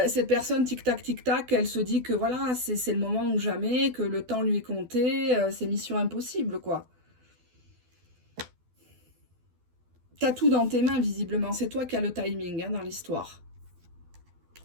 cette personne, tic-tac, elle se dit que voilà, c'est le moment ou jamais, que le temps lui est compté, c'est mission impossible, quoi. T'as tout dans tes mains, visiblement. C'est toi qui as le timing hein, dans l'histoire.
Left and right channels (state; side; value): late; left; 12 ms